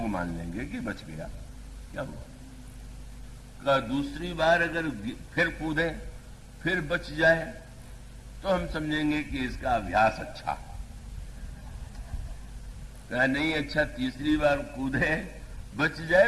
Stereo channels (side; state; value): both; identical; correlation 1.00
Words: मान लेंगे कि बच गया। क्या हुआ? का दूसरी बार अगर फिर कूदे फिर बच जाए तो हम समझेंगे कि इसका अभ्यास अच्छा। कहा नहीं अच्छा, तीसरी बार कूदे बच